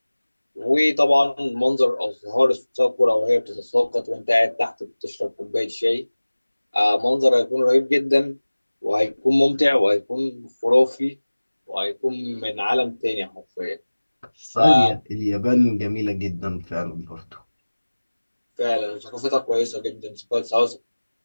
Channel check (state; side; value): inverted; both; correlation -1.00